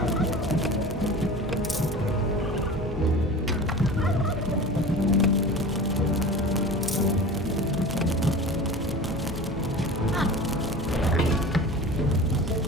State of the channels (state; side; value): normal; both; correlation 0.35